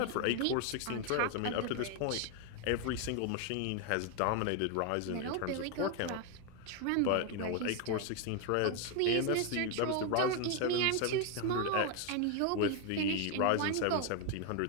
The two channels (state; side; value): different; both; correlation 0.01